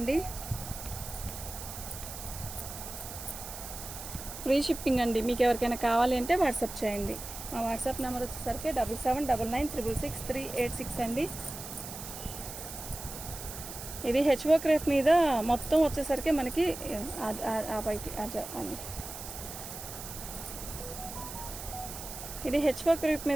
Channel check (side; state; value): right; noise; hiss, 10 dB below the sound